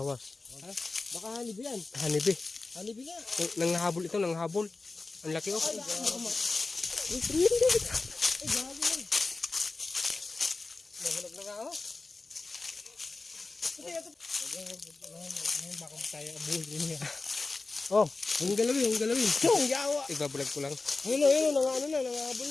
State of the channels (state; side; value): quieter; right; 3.7 dB